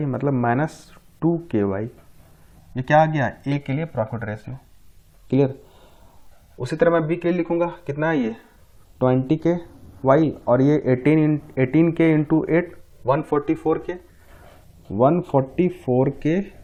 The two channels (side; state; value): both; identical; correlation 1.00